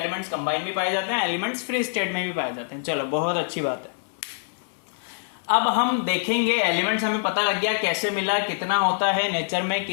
कंबाइन भी पाए जाते हैं, एलिमेंट्स फ्री स्टेट में भी पाए जाते हैं। चलो बहुत अच्छी बात है। अब हम देखेंगे एलिमेंट्स, हमें पता लग गया कैसे मिला, कितना होता है नेचर में,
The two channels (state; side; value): silent; right; 62 dB below the other